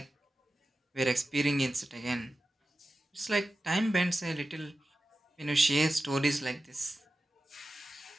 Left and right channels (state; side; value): normal; both; correlation 0.93